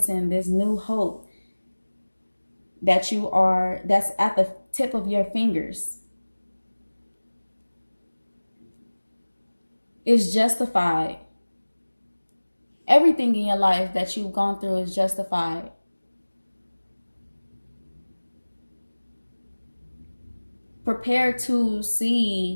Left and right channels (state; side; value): inverted; both; correlation -1.00